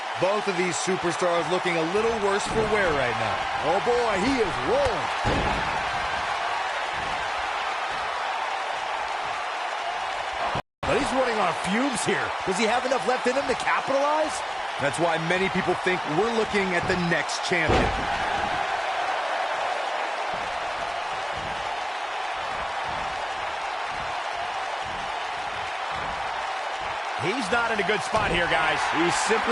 Both of these superstars looking a little worse for wear right now. Oh boy, he is rolling. But he's running on fumes here. Does he have enough left in him to capitalize? That's why many people think we're looking at the next champion. He's not in a good spot here, guys. He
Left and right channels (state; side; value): identical; both; correlation 1.00